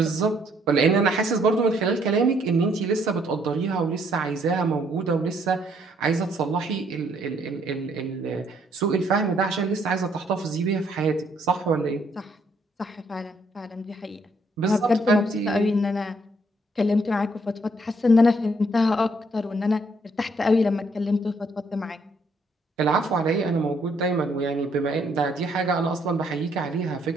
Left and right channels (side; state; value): both; normal; correlation 0.68